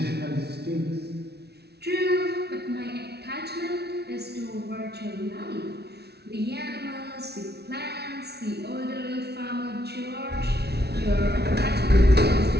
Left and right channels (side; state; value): left; late; 0.48 ms